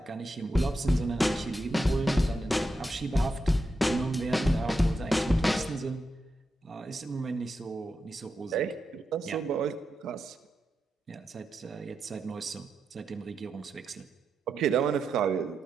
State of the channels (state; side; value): normal; both; correlation 0.87